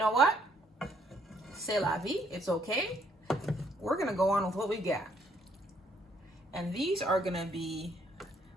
what? C'est la vie, it's okay. We're gonna go on with what we got. And these are gonna be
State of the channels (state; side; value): normal; both; correlation 0.68